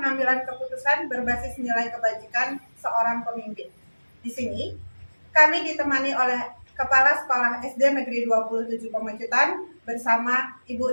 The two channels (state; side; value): inverted; both; correlation -1.00